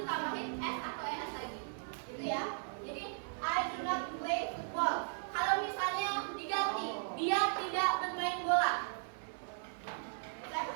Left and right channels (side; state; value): left; silent; 53 dB below the other